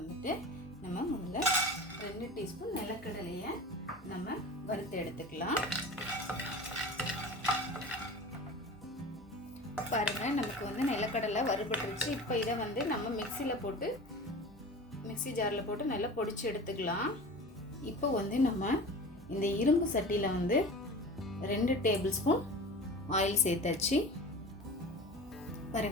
நம்ம முதல்ல 2 டீஸ்பூன் நிலக்கடலையை நம்ம வறுத்து எடுத்துக்கலாம். பாருங்கள், நமக்கு வந்து நிலக்கடலை வறுபட்டுருச்சு. இப்போ இதை வந்து நம்ம மிக்ஸி ஜாரில் போட்டு நல்லா பொடிச்சு எடுத்துக்கலாம். இப்போ வந்து நம்ம இந்த இரும்பு சட்டியில் வந்து 2 டேபிள் ஸ்பூன் ஆயில் சேர்த்தாச்சு.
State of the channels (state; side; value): normal; both; correlation 0.35